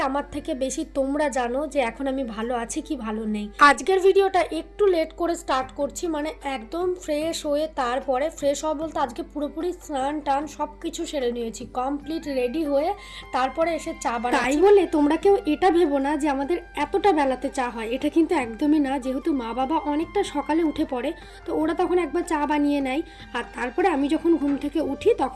আমার থেকে বেশি তোমরা জানো যে এখন আমি ভালো আছি কি ভালো নেই। আজকের ভিডিওটা একটু লেট করে স্টার্ট করছি, মানে একদম ফ্রেশ হয়ে তারপরে ফ্রেশ হওয়া বলতে আজকে পুরোপুরি স্নান টান সব কিছু সেরে নিয়েছি, কমপ্লিট রেডি হয়ে তারপরে এসে চা বানাচ্ছি। তাই বলে তোমরা কেউ এটা ভেবো না যে আমাদের এতটা বেলাতে চা হয়, এটা কিন্তু একদমই না। যেহেতু মা বাবা অনেকটা সকালে উঠে পড়ে, তো ওরা তখন একবার চা বানিয়ে নেয়, আর তারপরে আমি যখন ঘুম থেকে উঠি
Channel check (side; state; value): both; identical; correlation 1.00